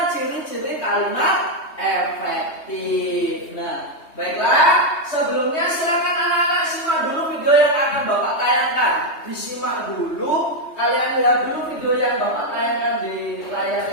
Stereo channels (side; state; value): right; late; 3.2 ms